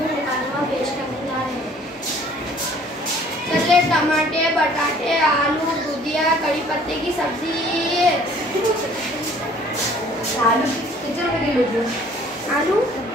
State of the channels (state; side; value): normal; both; correlation 0.55